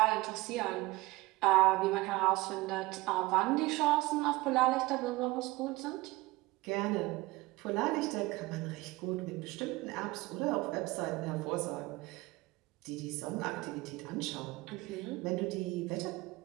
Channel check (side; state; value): left; quieter; 20.8 dB